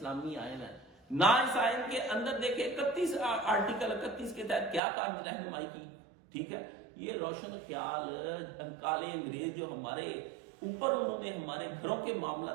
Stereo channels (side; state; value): left; drops out; at 4.8 s